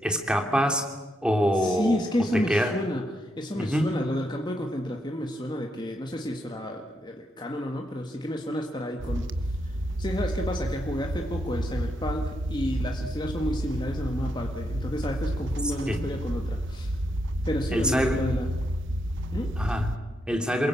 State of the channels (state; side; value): normal; both; correlation 0.81